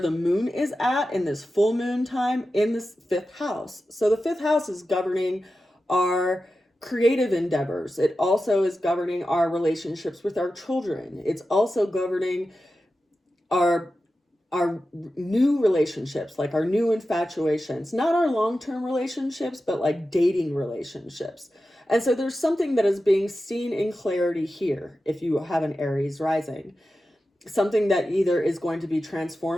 moon is at in this full moon time in this fifth house. So the fifth house is governing our creative endeavors. It also is governing our relationships with our children. It's also governing our new relationships, like our new infatuations, not our long-term relationships, but like dating relationships. And so there's something that is being seen in clarity here if you have an Aries rising. Something that either is going to be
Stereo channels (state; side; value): normal; both; correlation 0.92